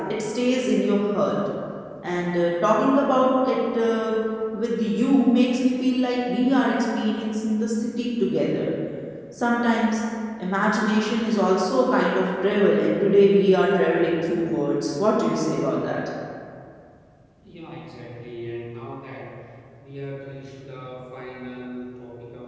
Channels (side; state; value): both; identical; correlation 1.00